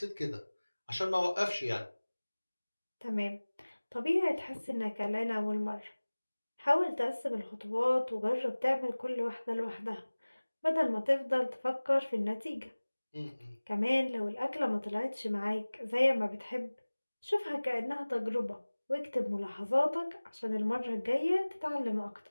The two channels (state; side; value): inverted; both; correlation -1.00